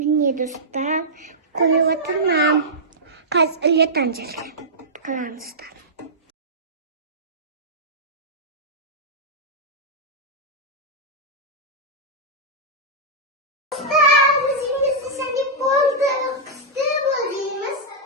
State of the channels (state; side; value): normal; both; correlation -0.10